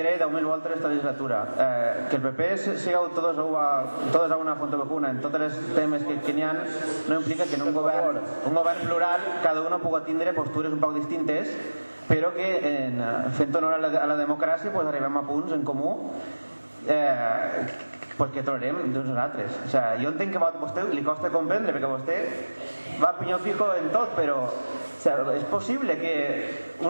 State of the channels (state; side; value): inverted; both; correlation -1.00